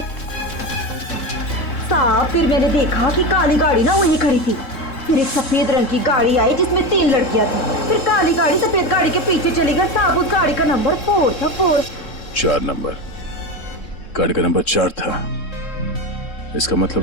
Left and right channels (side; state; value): right; late; 3.7 ms